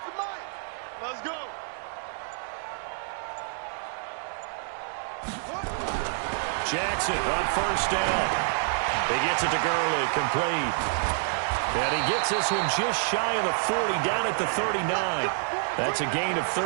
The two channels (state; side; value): silent; left; digital silence